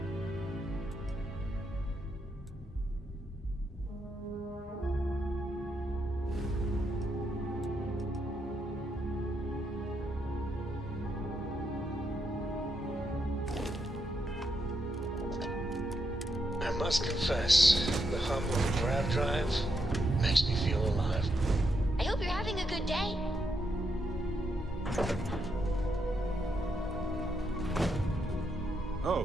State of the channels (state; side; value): normal; both; correlation 0.80